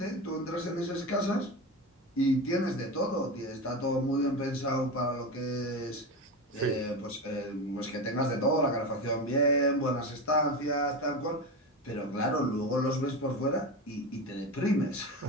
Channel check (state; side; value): normal; both; correlation 0.22